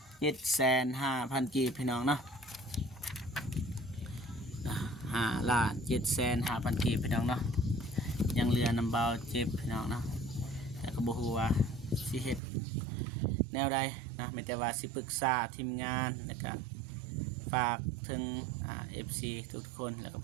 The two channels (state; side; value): drops out; left; at 12.4 s